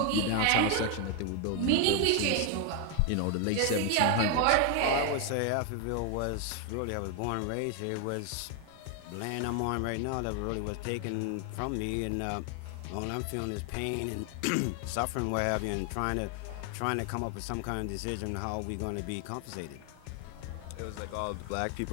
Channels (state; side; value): different; both; correlation 0.01